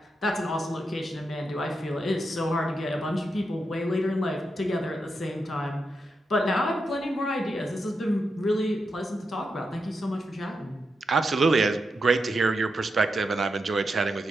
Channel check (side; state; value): both; normal; correlation 0.86